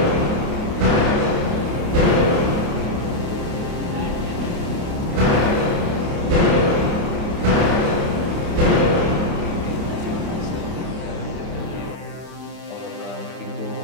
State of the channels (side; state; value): left; late; 28 ms